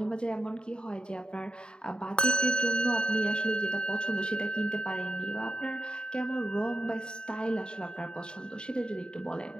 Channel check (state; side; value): late; right; 0.049 ms